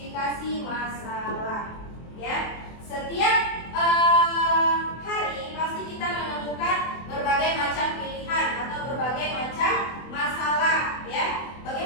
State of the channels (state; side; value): late; right; 24 ms